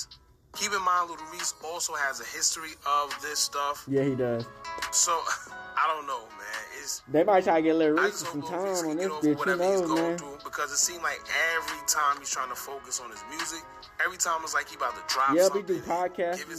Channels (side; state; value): both; identical; correlation 1.00